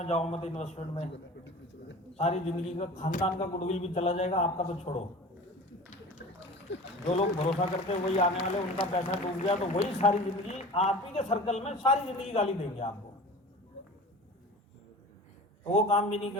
जाओ मत, इन्वेस्टमेंट में। सारी जिंदगी का खानदान का गुडविल भी चला जाएगा, आपका तो छोड़ो। जो लोग भरोसा करते हैं वही आने वाले, उनका पैसा डूब गया तो वही सारी जिंदगी आप ही के सर्कल में सारी जिंदगी गाली देंगे आपको। तो वो काम भी नहीं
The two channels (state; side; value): normal; both; correlation 0.38